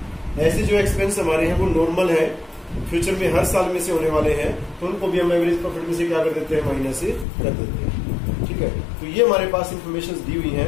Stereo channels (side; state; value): right; drops out; at 7.2 s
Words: ऐसे जो एक्सपेंस हमारे हैं वो नॉर्मल है, फ्यूचर में हर साल में से होने वाले हैं, तो उनको भी हम एवरेज प्रॉफिट में से क्या कर देते हैं, माइनस कर देते हैं। ठीक है, तो ये हमारे पास इंफॉर्मेशन दी हुई है।